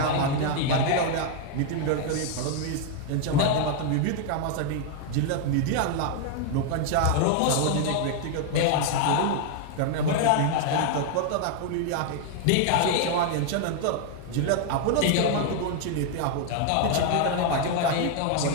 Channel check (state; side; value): different; both; correlation 0.00